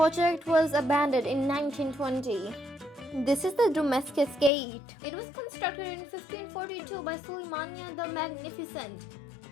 was abandoned in 1920. This is the Damascus Gate. It was constructed in 1542 by Suleymania the Magnificent.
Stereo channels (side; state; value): right; drops out; at 4.5 s